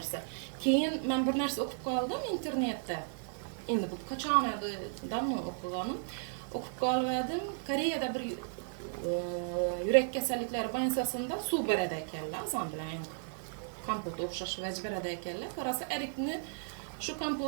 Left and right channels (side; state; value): left; silent; digital silence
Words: Keyin men bir narsa o'qib qoldim internetda. Endi bu qachon edi, damni o'qiganim. O'qib qoldim. Koreyada bir yurak kasalliklari bo'yicha suv beradi ekanlar, azon bilan kompot o'xshash vaj beradi ekanlar. Qarasa erikni, shu